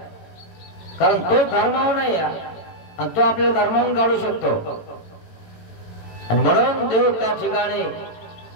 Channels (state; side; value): late; right; 18 ms